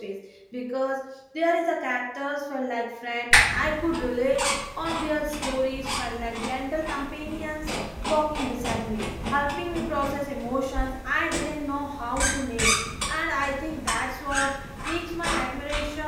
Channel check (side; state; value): both; identical; correlation 1.00